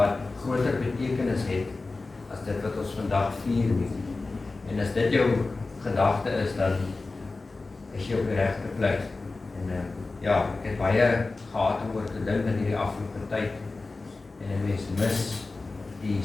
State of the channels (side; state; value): right; quieter; 3.6 dB